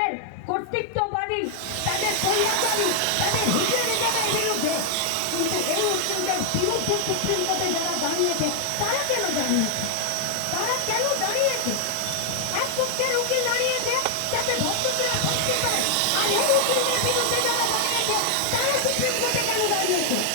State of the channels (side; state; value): both; different; correlation 0.00